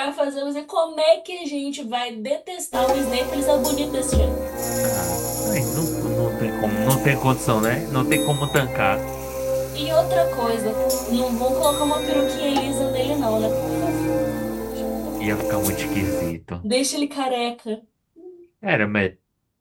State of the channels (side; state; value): both; identical; correlation 1.00